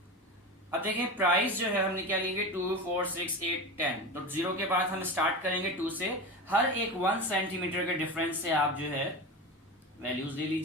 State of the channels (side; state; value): both; normal; correlation 0.25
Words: अब देखें, प्राइस जो है हमने क्या लेंगे? 2, 4, 6, 8, 10। तो 0 के बाद हम स्टार्ट करेंगे 2 से। हर एक 1 सेंटीमीटर के डिफरेंस से आप जो है वैल्यूज दे